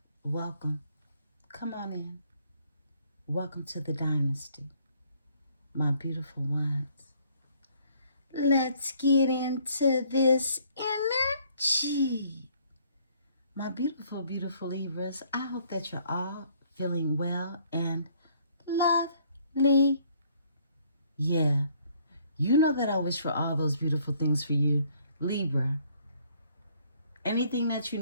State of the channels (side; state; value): both; inverted; correlation -0.63